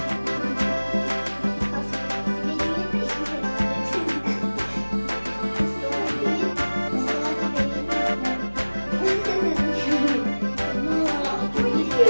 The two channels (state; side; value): inverted; both; correlation -1.00